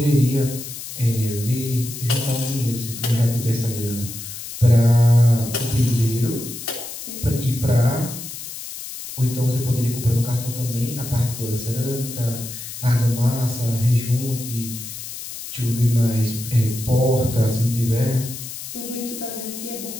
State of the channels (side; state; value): left; noise; hiss, 10 dB below the sound